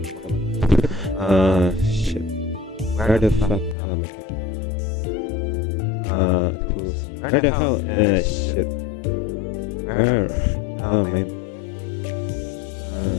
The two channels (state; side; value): drops out; right; at 3.8 s